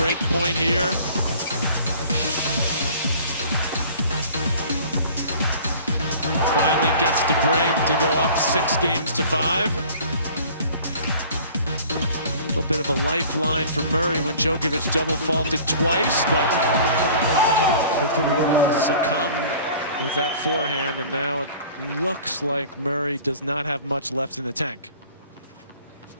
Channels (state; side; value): inverted; both; correlation -0.47